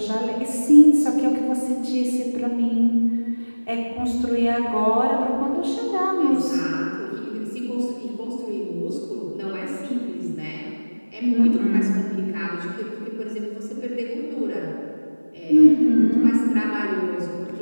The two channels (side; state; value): both; inverted; correlation -1.00